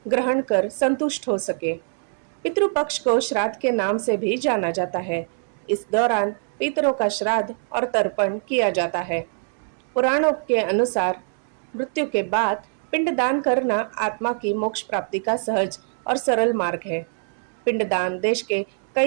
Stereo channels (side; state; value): left; silent; digital silence